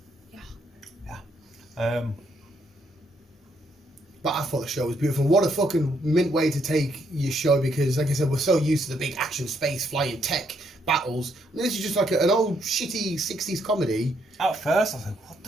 awesome. Yeah. But I thought the show was beautiful. What a fucking mint way to take your show, because, like I said, we're so used to the big action, space, flying, tech battles. And this is just like an old, shitty 60s comedy. At first, I was like, what the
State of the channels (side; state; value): both; normal; correlation 0.73